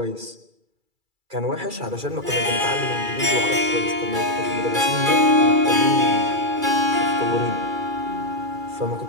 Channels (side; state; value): left; late; 2.3 ms